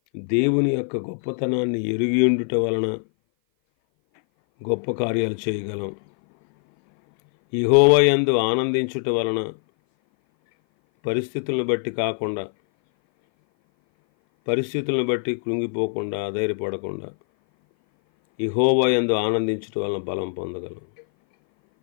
దేవుని యొక్క గొప్పతనాన్ని ఎరిగి ఉండుట వలన గొప్ప కార్యాలు చేయగలం. యెహోవా యందు ఆనందించుట వలన పరిస్థితులను బట్టి కాకుండా, పరిస్థితులను బట్టి కృంగిపోకుండా, అధైర్యపడకుండా యెహోవా యందు ఆనందించుట వలన బలం పొందగలం.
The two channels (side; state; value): right; silent; 58 dB below the other